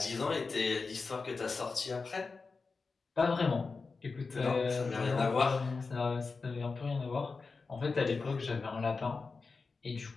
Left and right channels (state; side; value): quieter; right; 4.4 dB